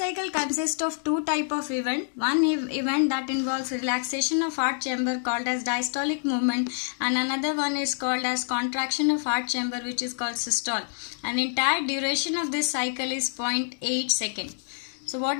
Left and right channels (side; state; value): right; silent; 60 dB below the other